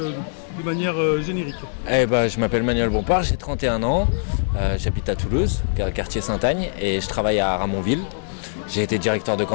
manière générique? Je m'appelle Manuel Bompard, j'ai 31 ans, j'habite à Toulouse, quartier Sainte-Agne, et je travaille à Ramonville. J'ai été directeur de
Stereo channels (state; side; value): silent; right; digital silence